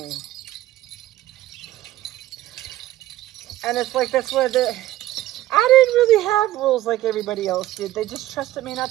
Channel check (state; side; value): quieter; left; 15.1 dB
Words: And it's like, that's where I didn't really have rules like everybody else did. They just trusted me not